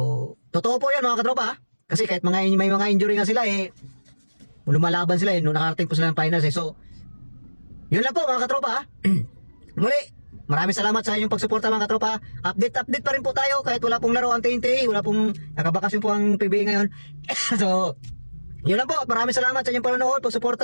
totoo po yan, mga katropa. Kasi kahit may mga injury nga sila eh, lumalaban sila eh, nung nakarating po sila ng finals eh. So, yun lang po, mga katropa. Muli, maraming salamat sa inyong pagsuporta, mga katropa. Update pa rin po tayo kahit wala pong laro ang TNT, wala pong nakabakasyon po ang PBA ngayon. So, yun lang po, maraming salamat sa inyong panonood,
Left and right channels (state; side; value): inverted; both; correlation -1.00